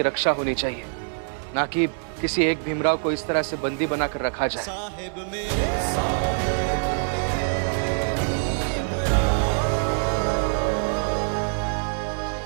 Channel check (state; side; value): silent; left; 62 dB below the other